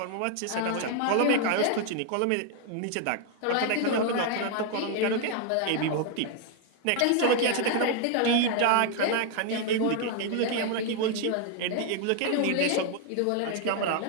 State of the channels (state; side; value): different; both; correlation 0.00